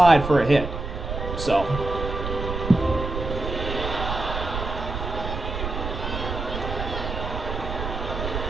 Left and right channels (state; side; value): noise; right; rumble, 5 dB below the sound